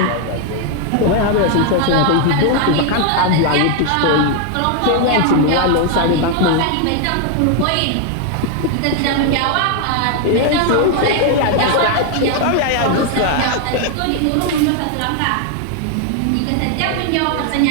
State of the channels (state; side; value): different; both; correlation 0.00